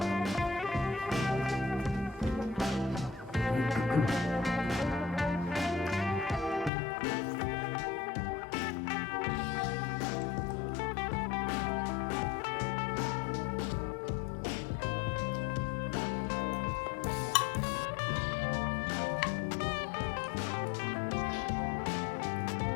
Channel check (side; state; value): right; drops out; at 6.7 s